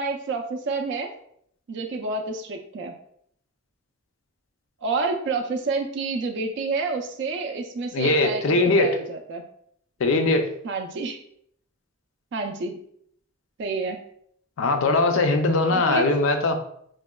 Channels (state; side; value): normal; both; correlation 0.02